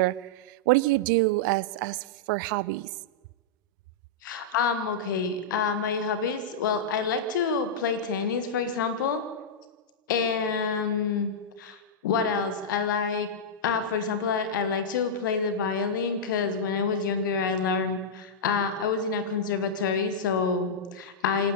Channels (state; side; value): normal; both; correlation -0.09